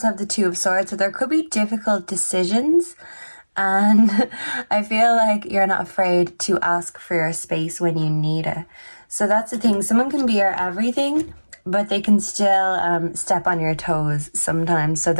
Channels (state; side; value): inverted; both; correlation -1.00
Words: have the Two of Swords, so there could be difficult decisions. And I feel like you're not afraid to ask for your space when you need it. So that's the thing. Someone can be your everything, but they can still step on your toes sometimes. So